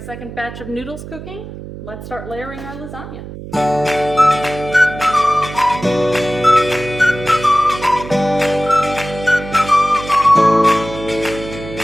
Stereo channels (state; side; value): noise; right; hum, 12 dB below the sound